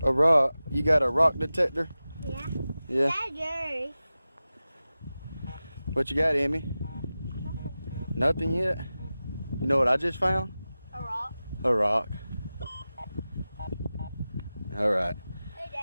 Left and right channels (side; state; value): both; inverted; correlation -0.95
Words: A rock. You got a rock detector? Yeah. Yeah. Daddy. What you got, Emmy? Nothing yet? You know what I just found? A rock. A rock. Alright. Hey,